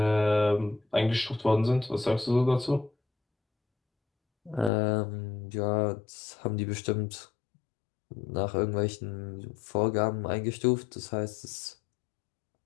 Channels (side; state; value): right; drops out; at 4.7 s